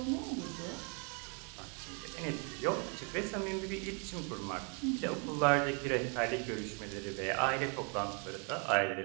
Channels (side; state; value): left; quieter; 37.4 dB